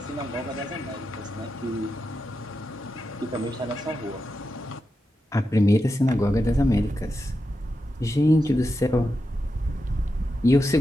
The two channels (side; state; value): both; normal; correlation 0.88